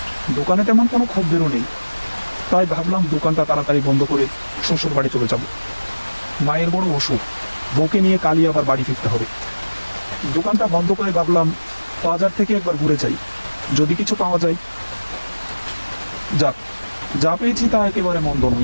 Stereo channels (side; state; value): both; inverted; correlation -1.00